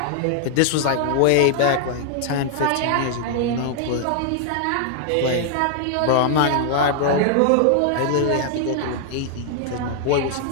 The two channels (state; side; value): different; both; correlation 0.00